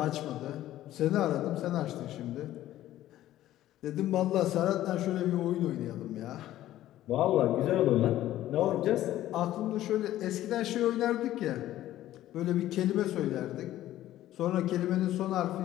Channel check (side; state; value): right; quieter; 13.9 dB